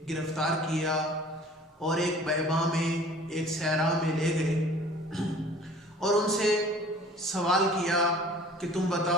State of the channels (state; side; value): normal; both; correlation 0.48